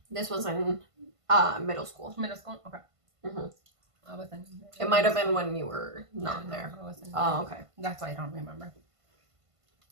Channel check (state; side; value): late; left; 1.5 ms